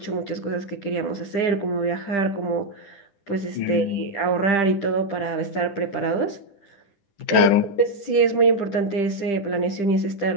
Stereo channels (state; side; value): late; right; 10 ms